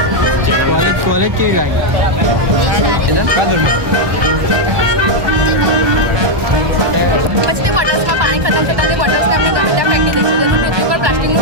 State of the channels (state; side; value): late; left; 1.2 ms